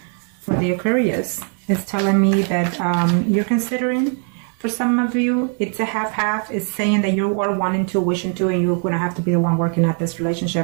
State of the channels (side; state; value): left; quieter; 39.9 dB